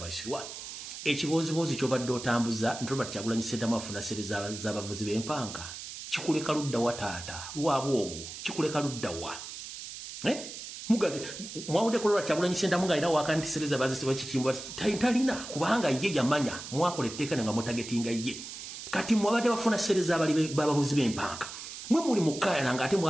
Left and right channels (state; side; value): noise; right; hiss, 10 dB below the sound